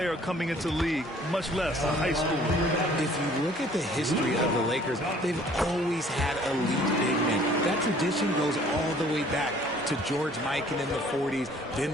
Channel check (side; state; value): both; normal; correlation 0.55